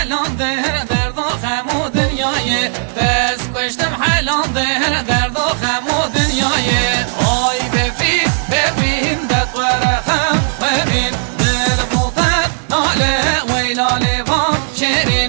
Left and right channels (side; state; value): left; silent; 63 dB below the other